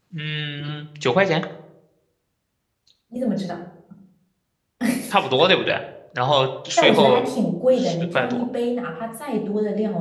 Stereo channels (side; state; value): both; identical; correlation 1.00